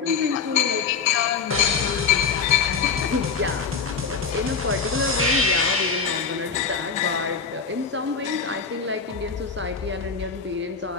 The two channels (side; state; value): right; quieter; 5.5 dB